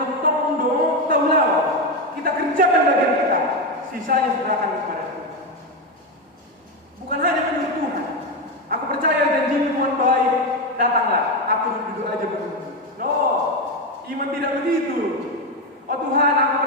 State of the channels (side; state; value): both; normal; correlation 0.12